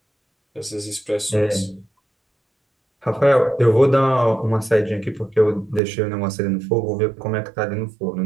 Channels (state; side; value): drops out; left; at 5.8 s